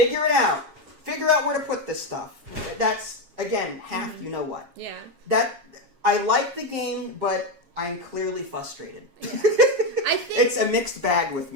it out. Figure out where to put this stuff. That's, again, half you know what. Yeah. I like the game, but I'm clearly frustrated. Yeah. I think it's a mixed bag with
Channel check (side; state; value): left; late; 7.4 ms